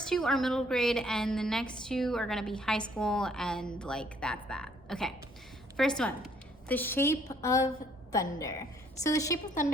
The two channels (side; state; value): both; normal; correlation 0.64